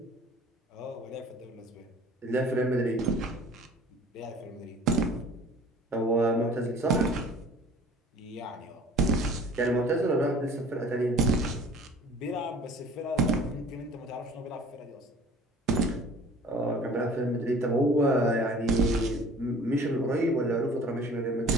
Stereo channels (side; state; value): both; normal; correlation 0.48